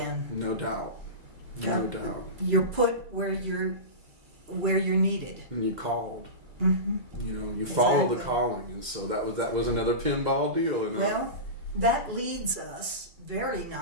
No doubt. No doubt. You're put where you're needed. And you called. You know, you follow the calling, and so that was another pinball deal. You know? Well, that leads us very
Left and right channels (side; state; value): left; late; 2.0 ms